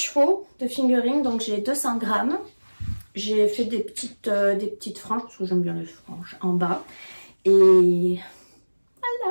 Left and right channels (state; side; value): inverted; both; correlation -1.00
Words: de fingering, donc j'ai 200 grammes. J'ai fait des petites franges, parce que j'aime bien les franges, en bas. Et